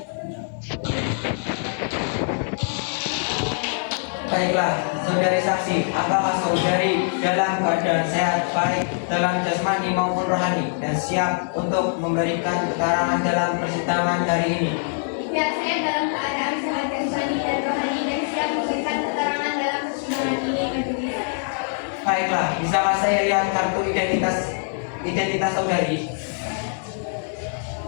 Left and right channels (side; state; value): right; silent; 63 dB below the other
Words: Baiklah, saudari saksi, apakah saudari dalam keadaan sehat baik dalam jasmani maupun rohani dan siap untuk memberikan keterangan dalam persidangan hari ini? Ya, saya dalam keadaan sehat jasmani dan rohani dan siap memberikan keterangan dalam persidangan ini, majelis. Baiklah, bisakah saya lihat kartu identitas saudari?